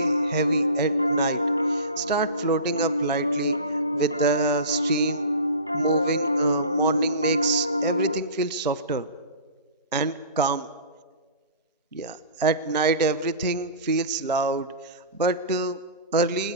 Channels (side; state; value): both; inverted; correlation -0.36